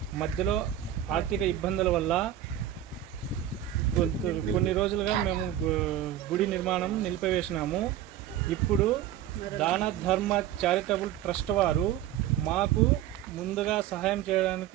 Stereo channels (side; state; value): left; quieter; 11.6 dB